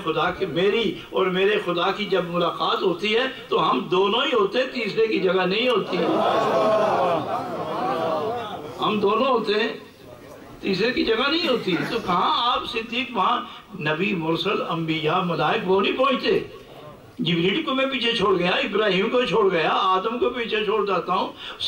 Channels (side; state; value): both; identical; correlation 1.00